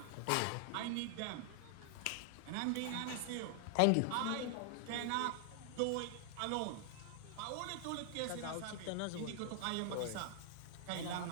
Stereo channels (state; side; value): different; both; correlation 0.00